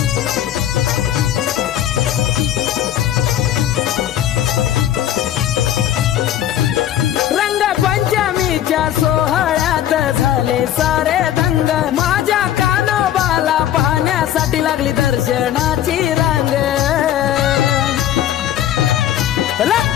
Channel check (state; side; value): quieter; right; 11.4 dB